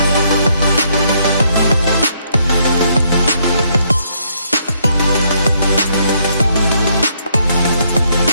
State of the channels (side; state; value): both; inverted; correlation -0.71